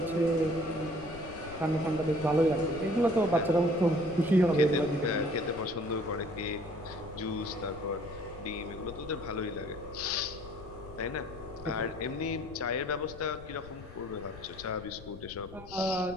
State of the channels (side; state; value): left; noise; rumble, 16 dB below the sound